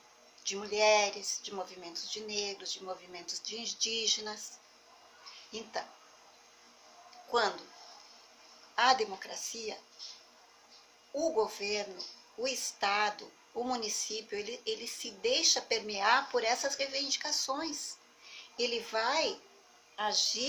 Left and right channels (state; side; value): identical; both; correlation 1.00